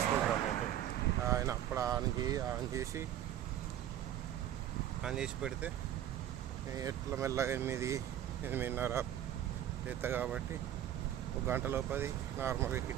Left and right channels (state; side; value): quieter; left; 11.4 dB